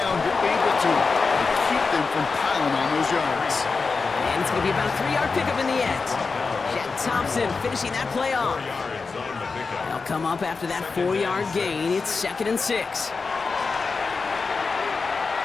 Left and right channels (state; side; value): quieter; right; 4.5 dB